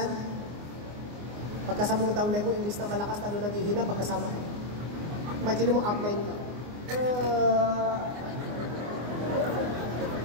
pagkasama mo downline mo, imbis na malakas talo naghihina, pagkasama ka. Imagine mo, upline ka.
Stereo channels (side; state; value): left; late; 24 ms